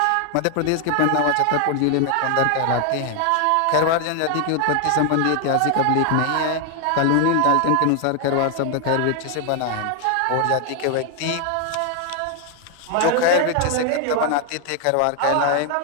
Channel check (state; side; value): different; both; correlation 0.00